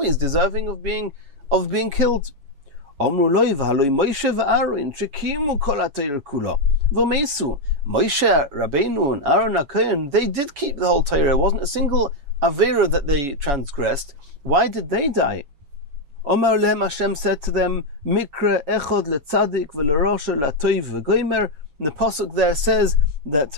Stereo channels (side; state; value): left; late; 7.1 ms